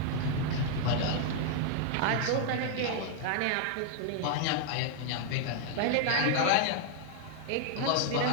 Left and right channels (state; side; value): different; both; correlation 0.00